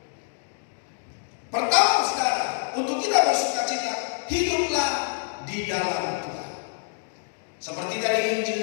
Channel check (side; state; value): right; silent; digital silence